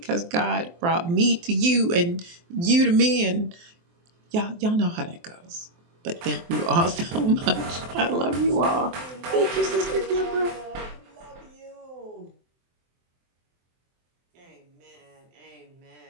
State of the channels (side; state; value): left; late; 23 ms